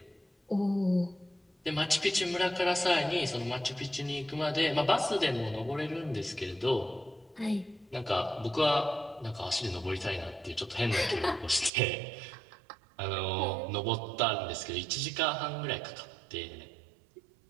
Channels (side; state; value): left; drops out; at 11.7 s